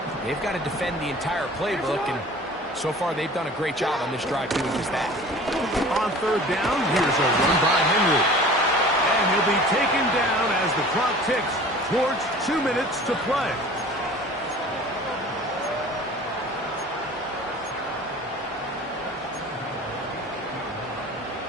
They've got to defend the entire playbook, and so far they've done a great job on this drive doing just that. On 3rd down, here's a run by Henry. And he'll be taken down as the clock ticks towards 2 minutes to play.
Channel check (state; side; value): normal; both; correlation 0.43